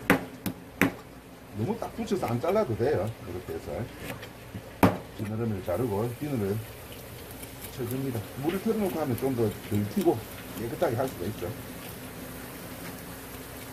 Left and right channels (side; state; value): both; identical; correlation 1.00